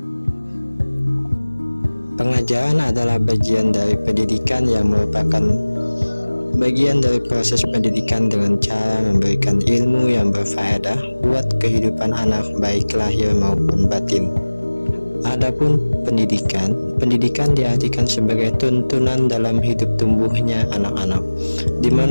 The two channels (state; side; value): inverted; both; correlation -1.00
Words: Pengajaran adalah bagian dari pendidikan yang merupakan bagian dari proses pendidikan dengan cara memberikan ilmu yang berfaedah buat kehidupan anak baik lahir maupun batin. Adapun pendidikan diartikan sebagai tuntunan dalam hidup tumbuhnya anak-anak, di